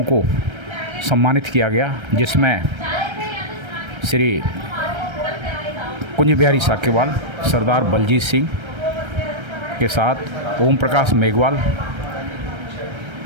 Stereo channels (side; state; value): left; late; 1.3 ms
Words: को सम्मानित किया गया, जिसमें श्री कुंज बिहारी साकेवाल, सरदार बलजीत सिंह के साथ ओम प्रकाश मेघवाल,